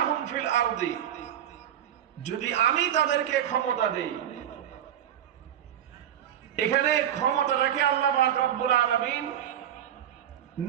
ফিল আরদি, যদি আমি তাদেরকে ক্ষমতা দেই। এখানে ক্ষমতাটাকে আল্লাহ পাক রব্বুল আলামিন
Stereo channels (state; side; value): quieter; left; 10.4 dB